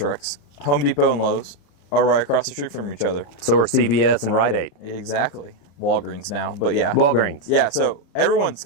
Home Depot and Lowe's are right across the street from each other. So are CVS and Rite Aid. Exactly. Walgreens now, but yeah. Walgreens. Yeah, so everyone's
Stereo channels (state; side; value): late; right; 35 ms